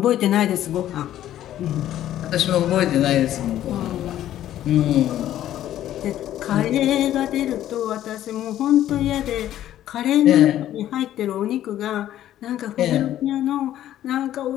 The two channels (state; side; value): quieter; right; 12.3 dB